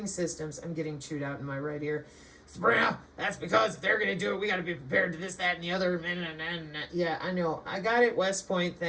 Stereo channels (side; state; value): both; identical; correlation 1.00